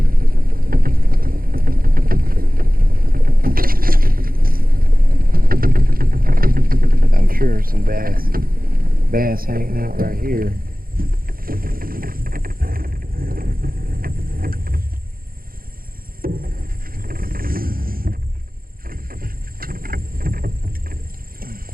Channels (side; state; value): left; late; 0.42 ms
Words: I'm sure some bass hanging out right here.